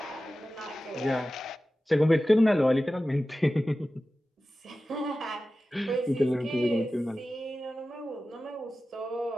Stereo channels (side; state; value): both; normal; correlation 0.95